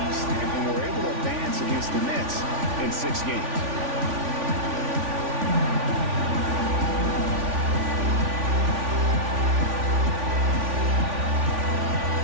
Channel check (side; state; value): left; late; 3.5 ms